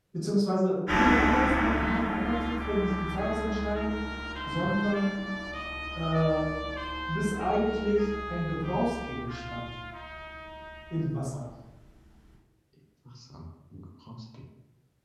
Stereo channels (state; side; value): identical; both; correlation 1.00